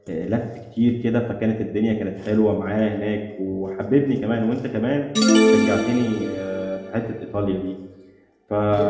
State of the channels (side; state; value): both; identical; correlation 1.00